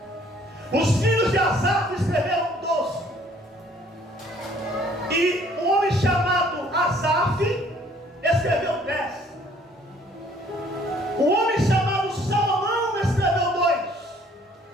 Os filhos de Asaf escreveram 12. E um homem chamado Asaf escreveu 10. O homem chamado Salomão escreveu 2.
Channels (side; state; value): both; normal; correlation 0.59